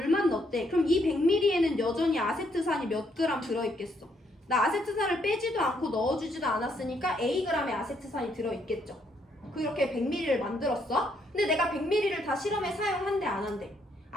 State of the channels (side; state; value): both; normal; correlation 0.72